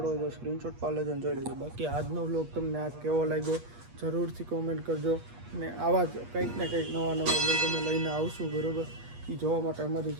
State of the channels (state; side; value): late; left; 8.4 ms